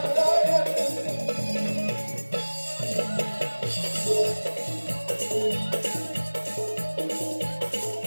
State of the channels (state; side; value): inverted; both; correlation -1.00